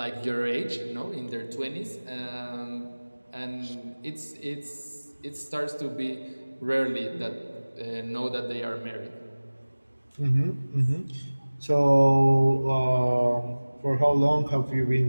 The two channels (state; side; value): inverted; both; correlation -1.00